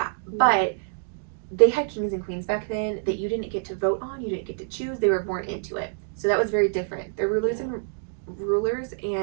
But they had kings and queens back then that you didn't get to vote on, you didn't get to choose. They were born into it. So that was very different. They're rulers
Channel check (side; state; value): left; silent; 61 dB below the other